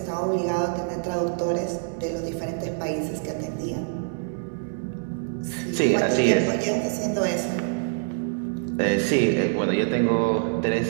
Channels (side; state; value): left; silent; digital silence